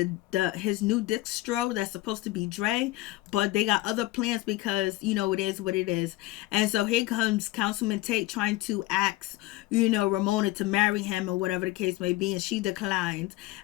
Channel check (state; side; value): quieter; right; 18.1 dB